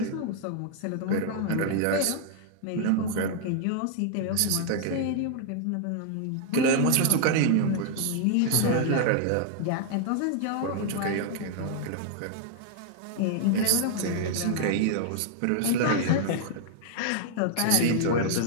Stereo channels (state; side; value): different; both; correlation -0.01